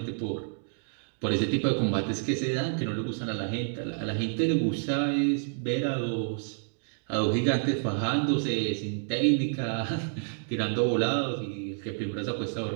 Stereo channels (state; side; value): silent; left; digital silence